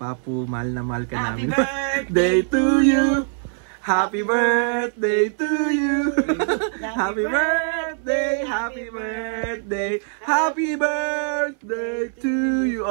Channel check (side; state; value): left; silent; 64 dB below the other